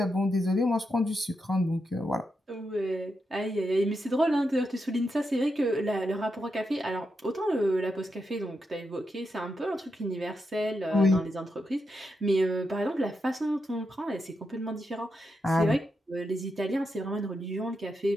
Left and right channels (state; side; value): normal; both; correlation 0.85